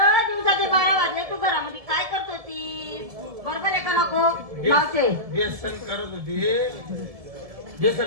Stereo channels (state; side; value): late; left; 1.7 ms